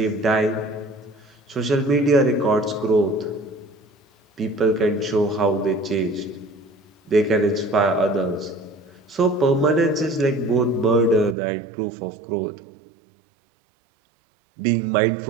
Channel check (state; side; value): drops out; left; at 11.4 s